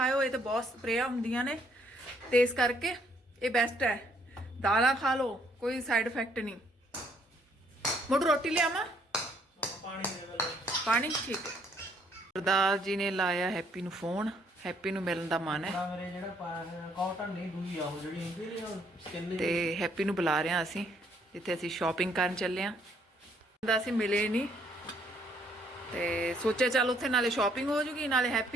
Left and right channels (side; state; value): both; normal; correlation 0.67